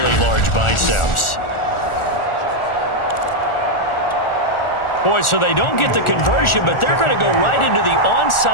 large biceps. Boy, so they don't get the conversion, but they're going to go right into the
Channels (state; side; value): late; right; 1.4 ms